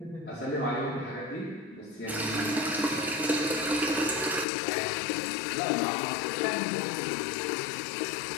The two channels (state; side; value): drops out; right; at 4.5 s